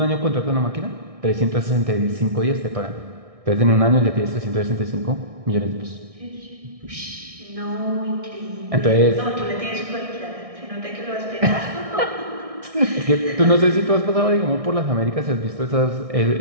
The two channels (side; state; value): left; late; 1.6 ms